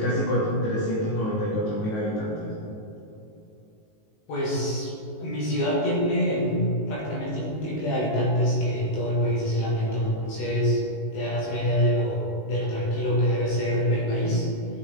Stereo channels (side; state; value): right; late; 19 ms